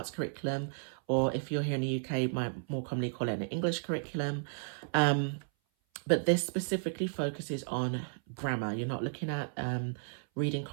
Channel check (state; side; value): silent; left; 55 dB below the other